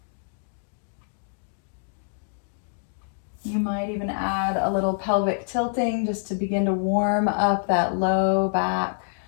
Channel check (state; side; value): silent; right; digital silence